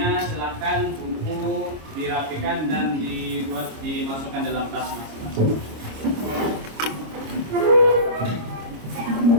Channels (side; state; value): left; late; 26 ms